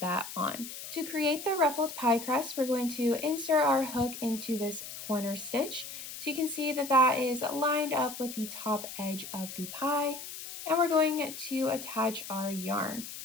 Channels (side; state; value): left; noise; hiss, 10 dB below the sound